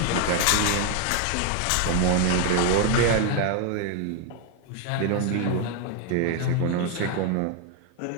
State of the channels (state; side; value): different; both; correlation 0.01